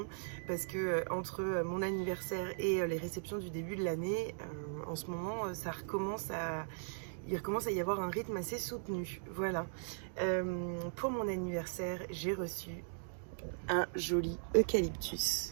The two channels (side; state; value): left; silent; digital silence